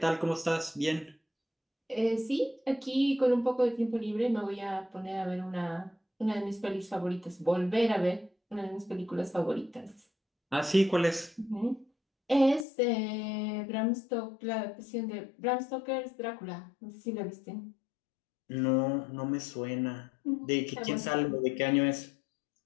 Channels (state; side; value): drops out; right; at 12.7 s